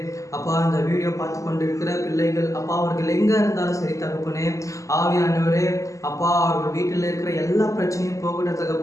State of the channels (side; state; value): right; late; 0.16 ms